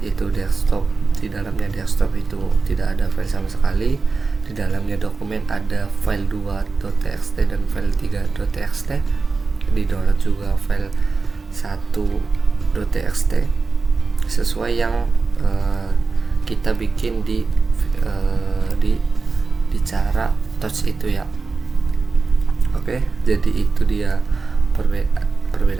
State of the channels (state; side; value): quieter; left; 4.3 dB